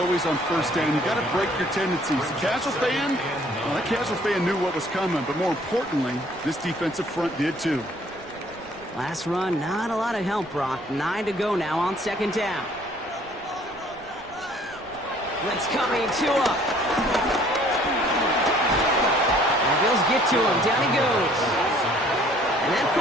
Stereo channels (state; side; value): noise; right; rumble, 24 dB below the sound